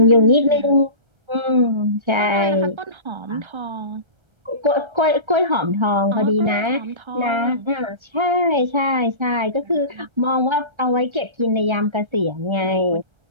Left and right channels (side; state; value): left; late; 1.3 ms